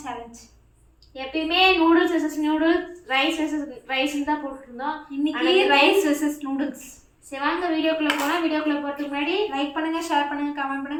சேலஞ்ச். எப்பயுமே noodles versus noodles, rice versus ரைஸ்ன்னு தான் போட்டுருந்தோம். இன்னைக்கு ரைஸ் வெர்சஸ் நூடுல்ஸ். சரி வாங்க வீடியோக்குள்ளே போனால். வீடியோக்குள்ளே போகிறதுக்கு முன்னாடி லைக் பண்ணுங்கள், ஷேர் பண்ணுங்கள், கமெண்ட்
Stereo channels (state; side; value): identical; both; correlation 1.00